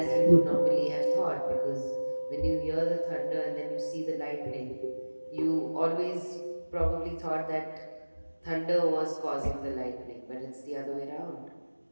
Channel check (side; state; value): both; inverted; correlation -1.00